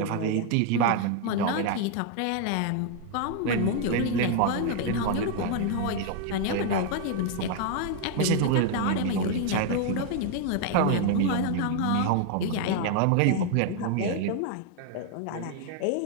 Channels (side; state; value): both; different; correlation 0.00